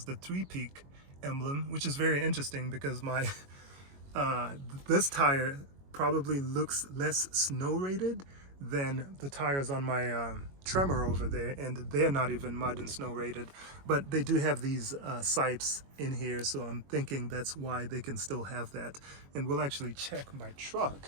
the 3-peak emblem, which is very interesting because my this tire probably looks less snow rated than the tires on my Tremor over there, and they're not even mud and snow rated, but they do have these sipes in here, so I'm thinking that's why they can still have that. And we'll actually check my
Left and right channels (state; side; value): late; left; 22 ms